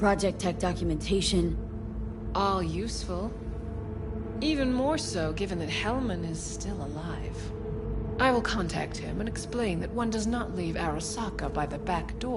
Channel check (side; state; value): both; identical; correlation 1.00